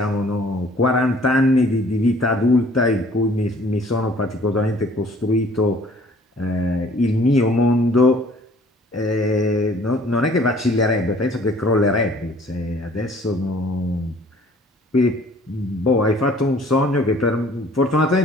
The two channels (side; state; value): both; normal; correlation 0.55